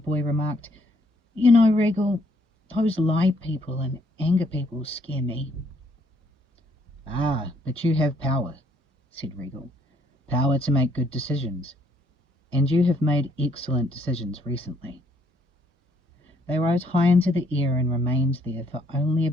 remarked, "You know, Regal, those lie people and anger people scare me." "Ah, but you have power," said Regal. "Power to make good decisions. And you have made excellent decisions recently." They rose high into the air and remained there for only a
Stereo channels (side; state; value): both; normal; correlation 0.68